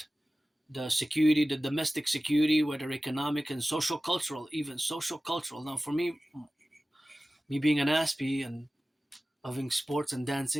the security, the domestic security, whether economic and social cultural, even social cultural. Now, for me being an Aspie and loving sports and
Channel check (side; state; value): both; normal; correlation 0.96